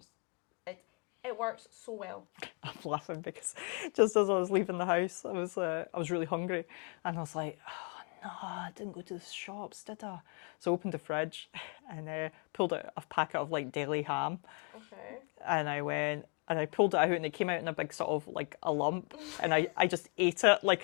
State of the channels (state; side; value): quieter; right; 37.1 dB